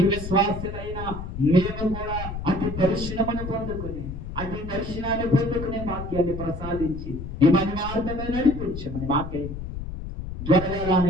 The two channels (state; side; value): noise; left; rumble, 8 dB below the sound